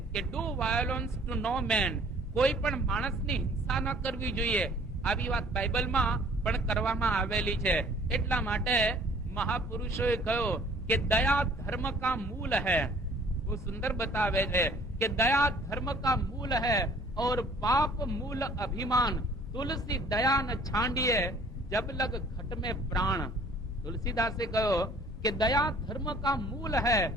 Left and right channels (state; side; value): normal; both; correlation 0.55